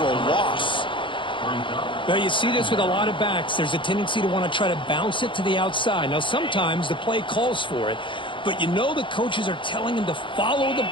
a loss. Well, you see this with a lot of backs. There's a tendency to want to try to bounce it to the outside. Now, sometimes the play calls for it, but you know the coaches are telling him to follow the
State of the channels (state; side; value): late; right; 0.24 ms